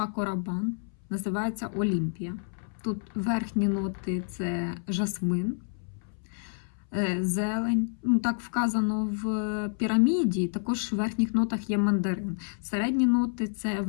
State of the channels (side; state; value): right; silent; 59 dB below the other